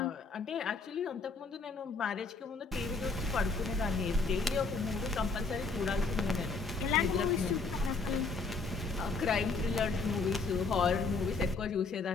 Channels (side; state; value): right; quieter; 4.1 dB